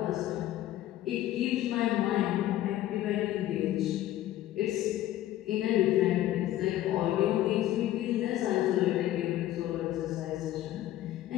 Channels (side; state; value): right; quieter; 13.7 dB